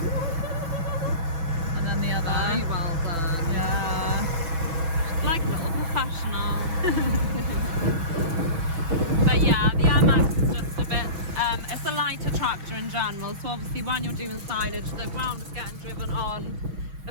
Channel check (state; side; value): late; left; 6.2 ms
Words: And then the other. Very well done. Yeah. Like a little professional. But yeah, the MX is just a bit, it's a lighter tractor in general, so obviously when you're doing silage, the ground is getting driven on